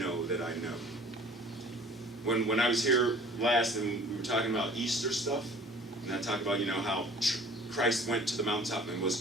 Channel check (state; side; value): normal; both; correlation 0.49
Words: that I know. When I was here last and we were talking about Easter stuff, and I talked about, how Christ went to the mountaintop and